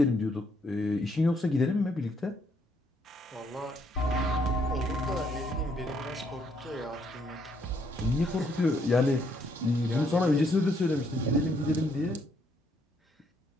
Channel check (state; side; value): normal; both; correlation 0.71